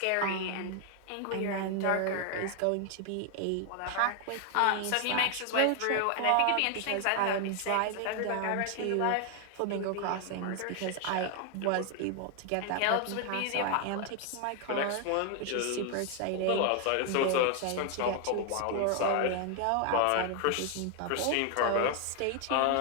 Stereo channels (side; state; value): both; different; correlation 0.00